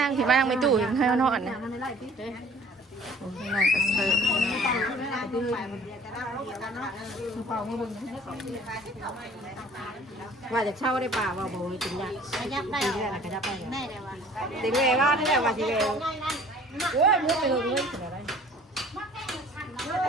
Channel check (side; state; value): both; normal; correlation 0.51